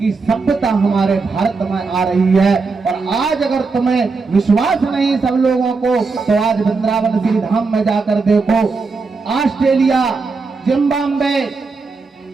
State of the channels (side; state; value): left; quieter; 4.3 dB